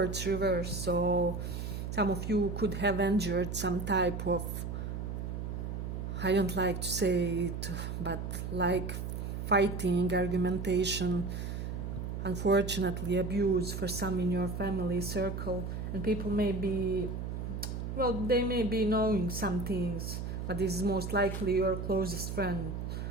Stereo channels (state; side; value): noise; right; hum, 4 dB below the sound